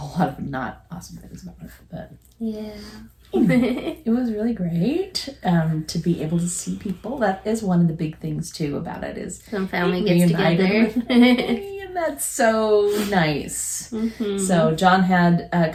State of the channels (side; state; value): both; identical; correlation 1.00